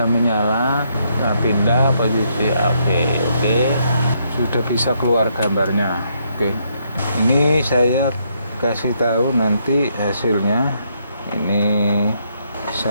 menyala, nah, pindah posisi AP. Oke, sudah bisa keluar gambarnya. Oke, ini saya kasih tahu nanti hasilnya. Ini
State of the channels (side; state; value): both; inverted; correlation -0.74